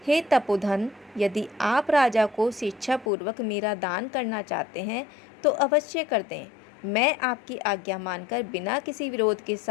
हे तपोधन, यदि आप राजा को स्वेच्छापूर्वक मेरा दान करना चाहते हैं तो अवश्य कर दें। मैं आपकी आज्ञा मानकर बिना किसी विरोध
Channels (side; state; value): right; drops out; at 3.1 s